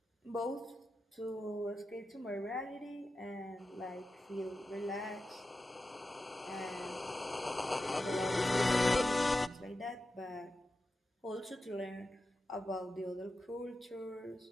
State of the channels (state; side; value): normal; both; correlation 0.91